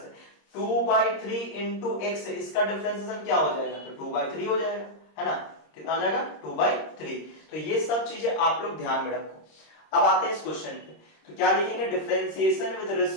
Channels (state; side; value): late; right; 26 ms